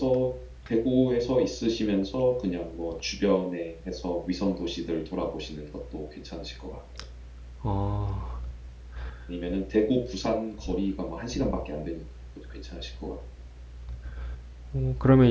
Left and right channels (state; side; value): identical; both; correlation 1.00